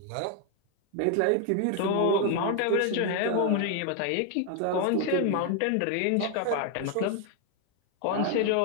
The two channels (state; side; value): different; both; correlation 0.01